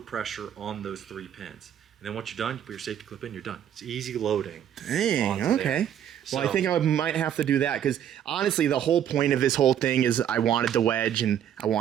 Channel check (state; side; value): quieter; left; 9.9 dB